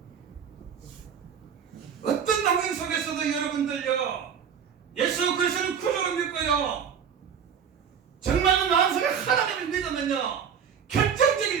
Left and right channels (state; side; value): quieter; left; 7.5 dB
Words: 어떤 환경 속에서도 여러분들요 예수 그리스도를 구주로 믿고요 정말로 마음속에 하나님을 믿으면요